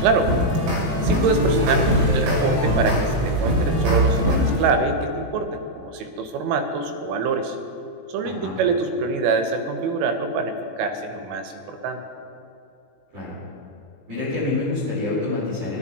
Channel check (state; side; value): late; left; 18 ms